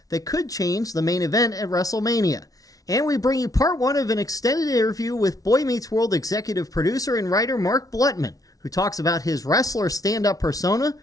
that could change the main event at WrestleMania. And we bring you part one of an extended interview with Boy Meets World executive producer and writer Mark Blutman, who talks about his wrestler stand-up persona,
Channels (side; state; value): right; late; 0.18 ms